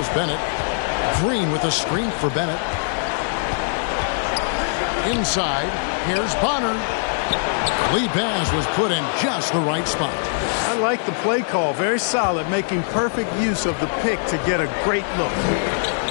Bennett. Green with a screen for Bennett. Inside, here's Bonner. Lee pass was put in just the right spot. I like the play call. Very solid, making perfect use of the pick to get a great look.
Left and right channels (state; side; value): silent; right; digital silence